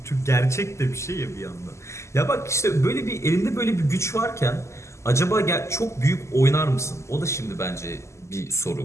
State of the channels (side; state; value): right; late; 0.13 ms